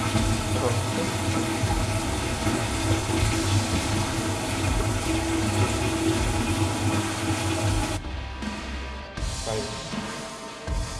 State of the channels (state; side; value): identical; both; correlation 1.00